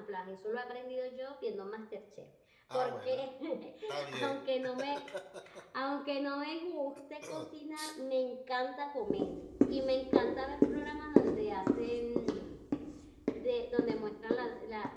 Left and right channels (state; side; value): identical; both; correlation 1.00